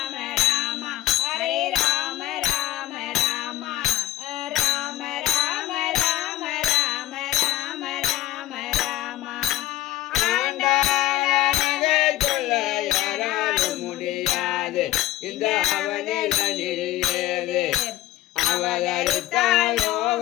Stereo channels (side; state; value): right; quieter; 15.4 dB